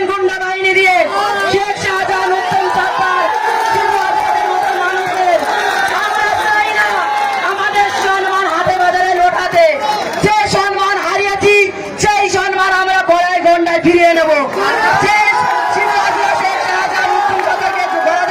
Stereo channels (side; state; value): both; identical; correlation 1.00